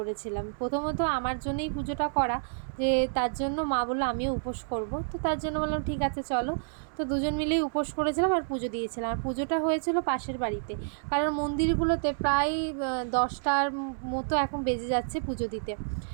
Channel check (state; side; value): silent; left; 58 dB below the other